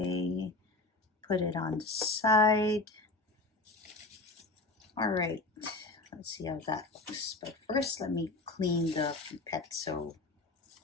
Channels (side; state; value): right; quieter; 3.2 dB